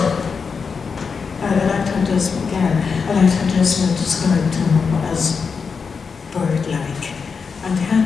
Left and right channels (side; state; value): right; quieter; 5.5 dB